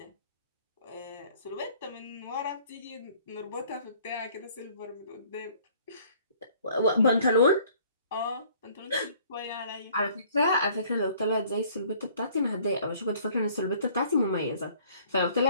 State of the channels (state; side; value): inverted; both; correlation -0.56